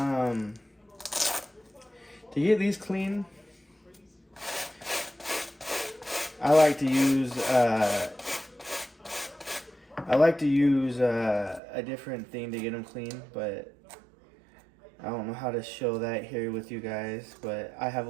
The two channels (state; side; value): drops out; left; at 11.6 s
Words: get these clean, I like to use a different thing to get them clean, but I don't know how to show that here with you guys. But I have